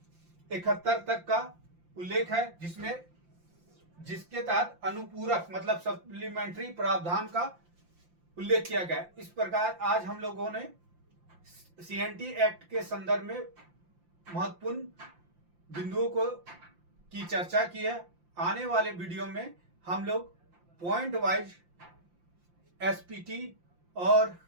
तक का उल्लेख है जिसके तहत अनुपूरक मतलब सप्लीमेंट्री प्रावधान का उल्लेख किया गया। इस प्रकार आज हम लोगों ने सीएनटी एक्ट के संदर्भ में महत्वपूर्ण बिंदुओं की चर्चा की है। आने वाले वीडियो में हम लोग पॉइंट वाइज एसपीटी और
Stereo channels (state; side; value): late; left; 5.8 ms